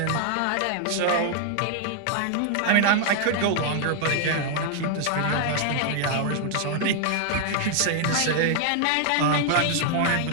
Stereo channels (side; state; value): both; different; correlation 0.00